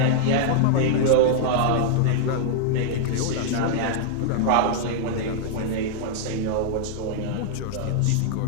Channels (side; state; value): both; different; correlation -0.01